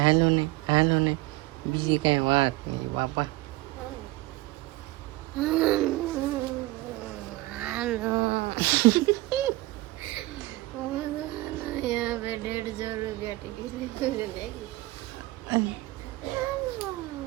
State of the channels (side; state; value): left; quieter; 19.5 dB